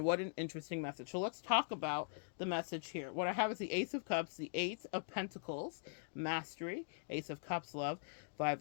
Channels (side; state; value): right; silent; digital silence